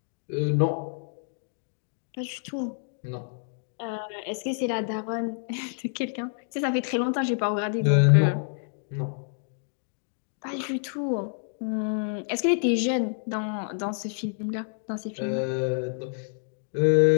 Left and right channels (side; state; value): right; silent; digital silence